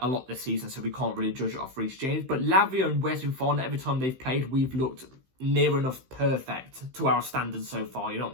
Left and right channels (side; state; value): left; late; 15 ms